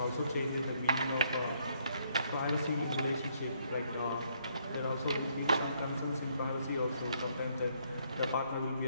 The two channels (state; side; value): inverted; both; correlation -0.70